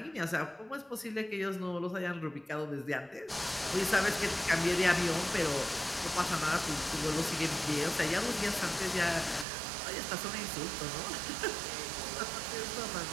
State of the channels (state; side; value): drops out; left; at 9.5 s